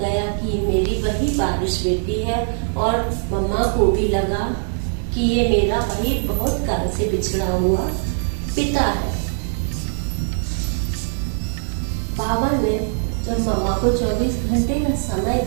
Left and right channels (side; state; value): left; silent; 65 dB below the other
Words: कि मेरी वही बारिश बेटी है, और मम्मा को भी लगा कि ये मेरा वही बहुत काल से बिछड़ा हुआ पिता है। बाबा ने जब मम्मा को 24 घंटे का समय